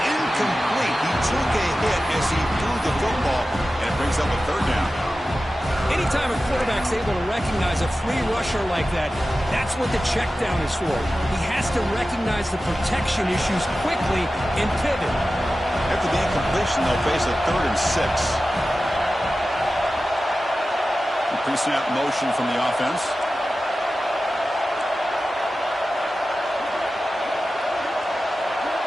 incomplete. He took a hit as he threw the football, and it brings up a third down. Anytime a quarterback's able to recognize a free rusher like that, that's what the check down is for. He has to recognize the protection issues quickly and pivot. After the incompletion, they'll face a 3rd and 6. Pre-snap motion from the offense.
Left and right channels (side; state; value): both; normal; correlation 0.94